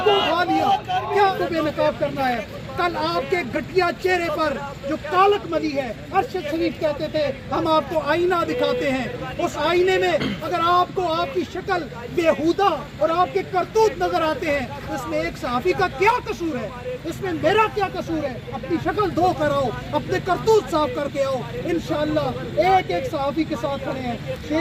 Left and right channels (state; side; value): identical; both; correlation 1.00